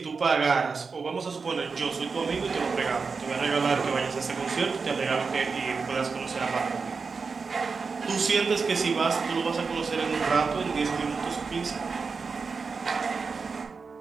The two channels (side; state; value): left; quieter; 4.9 dB